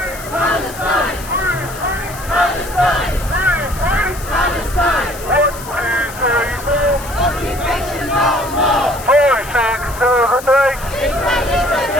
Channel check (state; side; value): noise; left; hiss, 15 dB below the sound